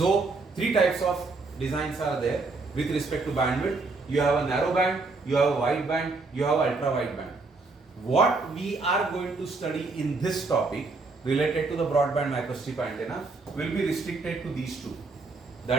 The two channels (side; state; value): left; quieter; 3.8 dB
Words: three types of designs are there with respect to bandwidth. You have a narrow band, you have a wide band, you have ultra wide band. What we are going to study in this topic related to the broadband microstrip antenna will be restricted to these two.